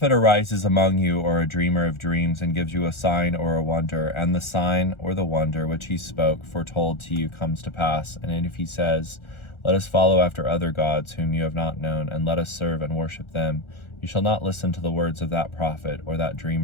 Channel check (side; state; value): right; late; 1.4 ms